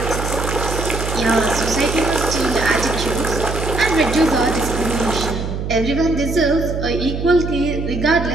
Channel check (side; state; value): right; noise; hum, 4 dB below the sound